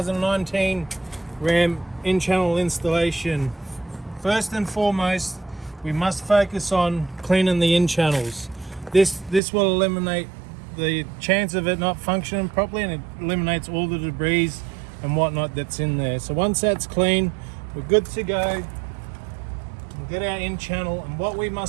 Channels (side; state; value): left; drops out; at 9.4 s